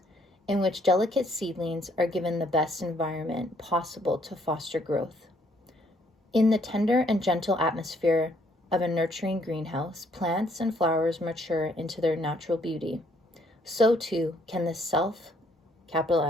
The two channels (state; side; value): normal; both; correlation 0.67